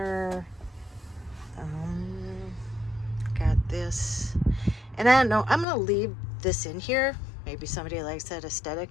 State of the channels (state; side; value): drops out; right; at 5.7 s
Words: Got this. And I don't know, I'm gonna leave this in here. Maybe somebody likes that aesthetic.